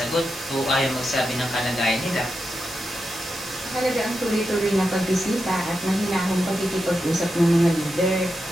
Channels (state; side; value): normal; both; correlation 0.88